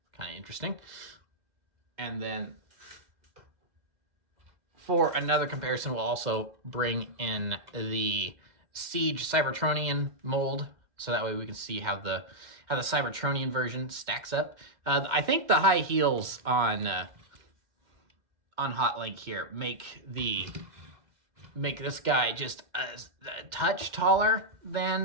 kind of interesting. And then for another comparison, we'll also bring in the Siege Cybertronian mold, so that way we can see how the Cybertronian version stacks up. I think the high heels on Hotlink here make this guy just a touch taller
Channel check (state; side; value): late; left; 2.1 ms